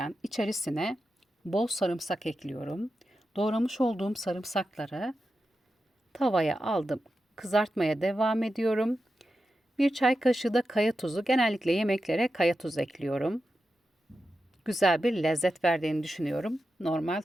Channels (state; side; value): normal; both; correlation 0.90